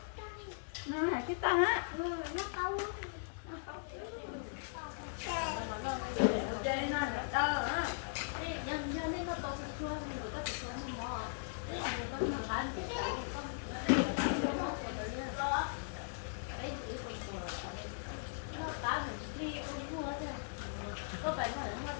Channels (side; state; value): right; silent; digital silence